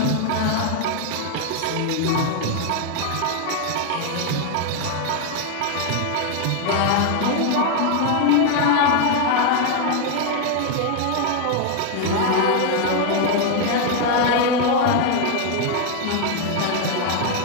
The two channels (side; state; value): both; different; correlation 0.01